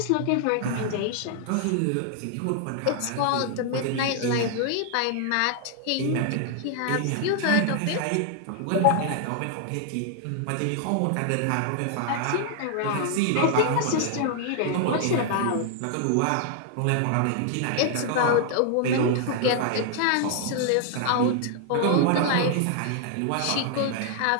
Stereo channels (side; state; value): both; different; correlation 0.00